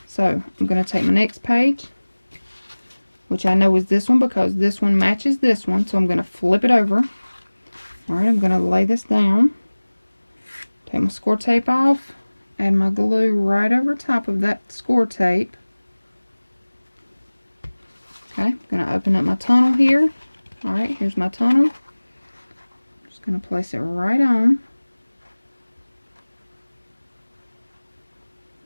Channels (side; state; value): both; inverted; correlation -1.00